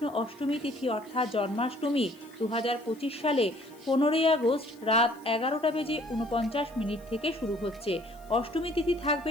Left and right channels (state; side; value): noise; left; hiss, 27 dB below the sound